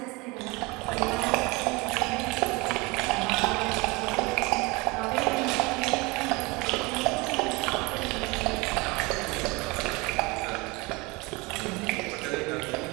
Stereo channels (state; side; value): quieter; left; 25.3 dB